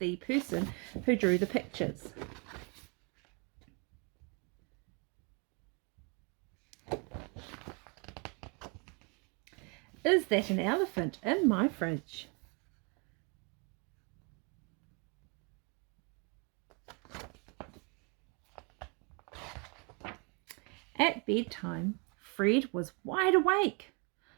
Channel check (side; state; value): left; quieter; 33.6 dB